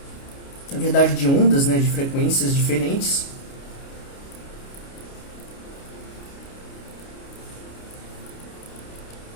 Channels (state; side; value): late; right; 29 ms